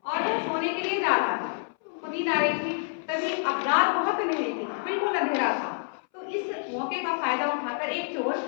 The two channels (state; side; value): silent; right; 60 dB below the other